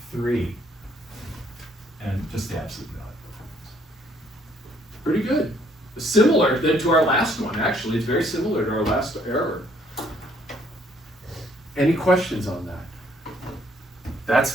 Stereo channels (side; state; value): both; normal; correlation 0.65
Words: And just the absolute value. Pretty good. Similar then to our last one, actually. It's very similar to our last error. Any questions on that? That's